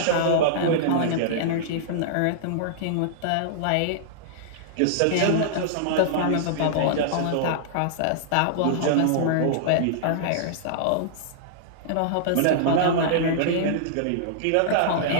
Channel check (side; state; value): both; different; correlation -0.02